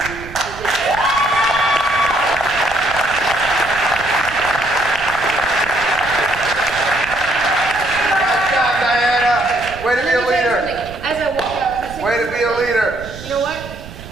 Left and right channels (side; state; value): right; noise; rumble, 15 dB below the sound